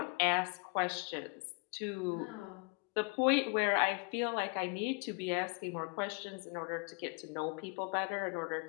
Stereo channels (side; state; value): right; quieter; 32.6 dB